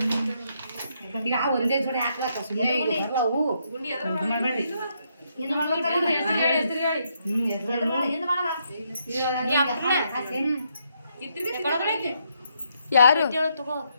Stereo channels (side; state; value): both; inverted; correlation -0.76